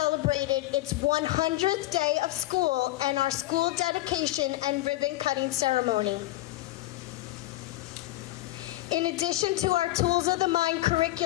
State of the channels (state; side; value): quieter; right; 17.0 dB